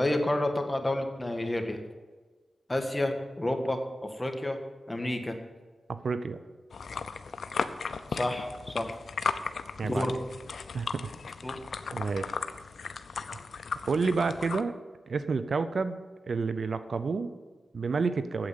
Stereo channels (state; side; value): normal; both; correlation 0.90